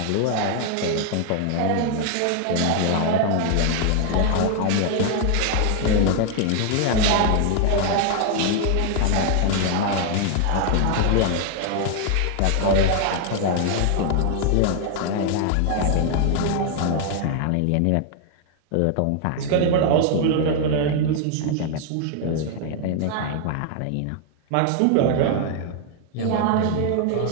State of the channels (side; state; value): both; different; correlation 0.00